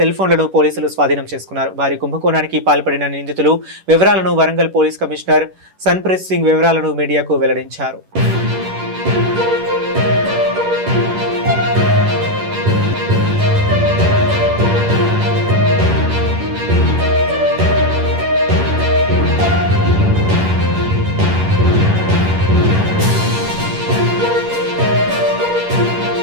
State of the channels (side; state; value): left; late; 11 ms